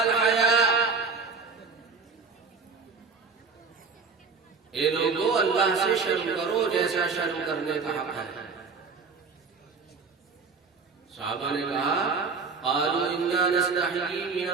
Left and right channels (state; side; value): quieter; left; 4.8 dB